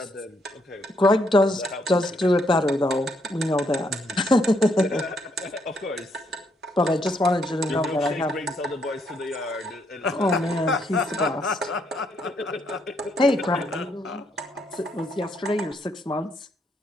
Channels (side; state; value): both; normal; correlation 0.74